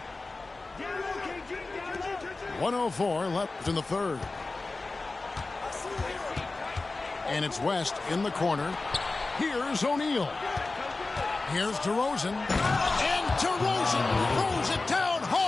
.104 left in the third. And it's West in the corner. Here's O'Neal. Here's DeRozan. And DeRozan throws it down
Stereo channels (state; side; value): quieter; right; 3.5 dB